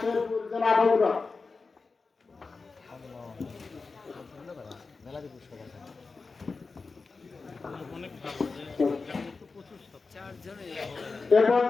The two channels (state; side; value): quieter; right; 4.2 dB